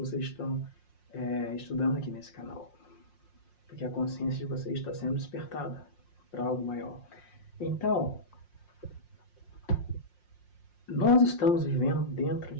estão estudando aqui nesse canal, porque a consciência de vocês está sendo despertada para algo maior. Então, nós estamos vivendo dentro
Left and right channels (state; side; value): late; right; 5.6 ms